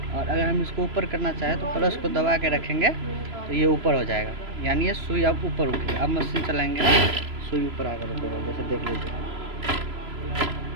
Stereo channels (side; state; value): left; late; 3.0 ms